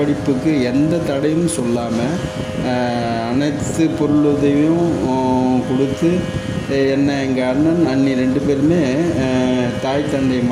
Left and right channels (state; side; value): identical; both; correlation 1.00